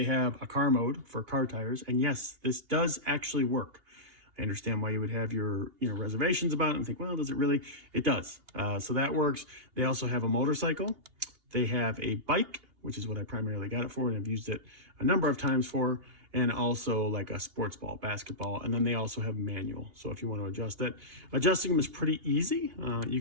have a car mode for car tires. And yes, this does actually work. I understand why you would have your reservations about it and think, well, does it really? It does. So that works. They also have a motorcycle. They have a bike, which is what I primarily got it for, and I've used it a number of times for, and also like a sports ball, basketball, and then they also have manual. So if you want to adjust it, adjusting them is pretty easy.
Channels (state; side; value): late; left; 2.8 ms